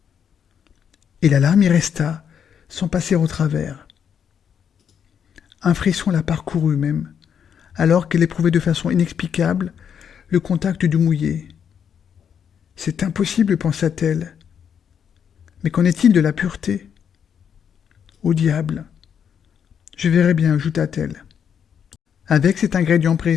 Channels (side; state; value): right; quieter; 7.9 dB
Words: Et la larme y resta, sans passer au travers. Un frisson la parcourut même, alors qu'elle éprouvait de façon inexplicable le contact du mouillé. C'est impossible, pensa-t-elle. Mais qu'en est-il de la pureté? Au diable! Je verrai bien, ajouta-t-elle. Avec cet ingrédient